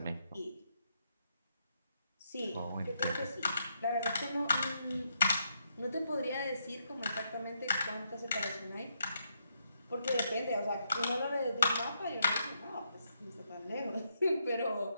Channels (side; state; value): both; inverted; correlation -0.78